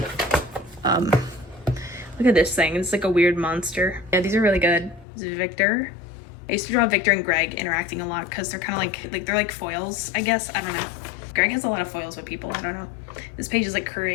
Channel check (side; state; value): right; drops out; at 5.1 s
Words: look at this thing. It's, like, a weird monster. Yeah, these are really good. This is Victor. I used to draw Victor and Greg interacting a lot, because they're kind of, like, they're, like, foils, I guess. I don't know. Greg has a lot of foils with people. I don't know. This page is like